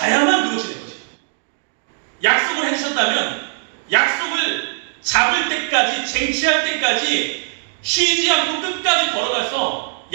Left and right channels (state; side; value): silent; left; digital silence